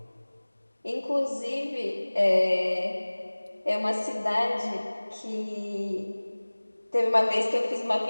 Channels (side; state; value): both; inverted; correlation -1.00